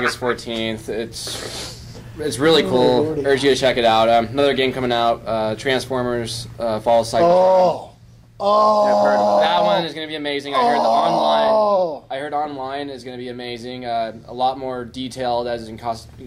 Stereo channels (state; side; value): identical; both; correlation 1.00